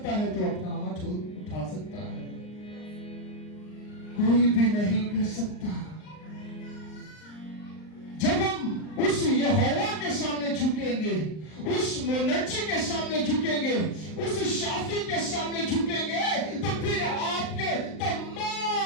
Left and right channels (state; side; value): late; right; 39 ms